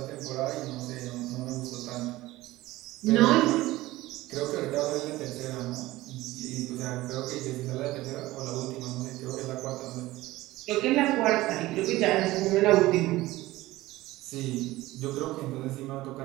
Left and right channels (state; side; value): quieter; left; 17.9 dB